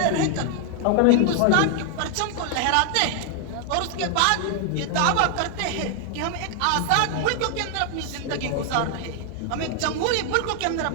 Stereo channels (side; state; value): both; different; correlation 0.00